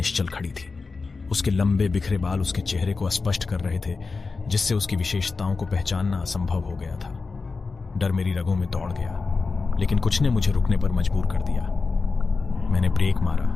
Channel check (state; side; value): quieter; right; 4.3 dB